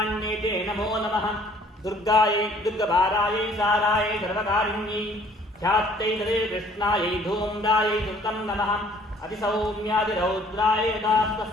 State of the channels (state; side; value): normal; both; correlation 0.57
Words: नमो नमः दुर्गायै दुर्गभारायै सारायै सर्वकारिण्यै ख्यात्यै तदेव कृष्णायै धूम्रायै सुतं नमः अतिसौम्यादिरौद्रायै